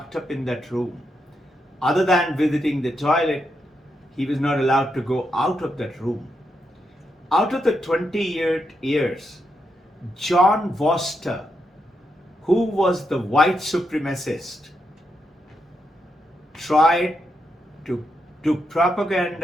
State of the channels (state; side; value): normal; both; correlation 0.82